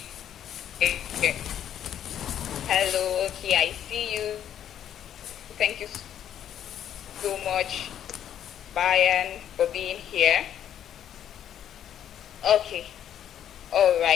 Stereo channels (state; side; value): quieter; right; 10.2 dB